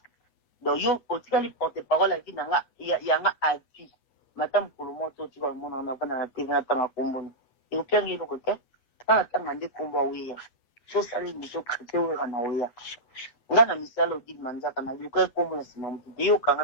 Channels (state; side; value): late; right; 8.2 ms